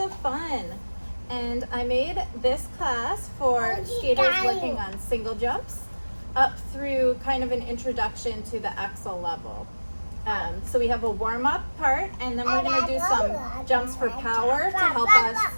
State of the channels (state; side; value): inverted; both; correlation -1.00